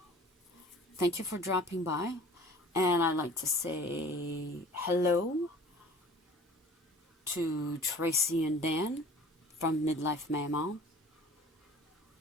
thank you for dropping by. And I'd like to say hello to Tracy and Dan from Midlife Mama.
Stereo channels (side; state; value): both; normal; correlation 0.46